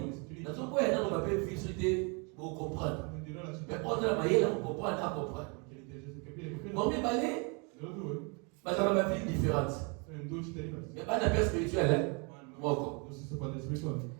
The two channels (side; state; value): left; quieter; 33.4 dB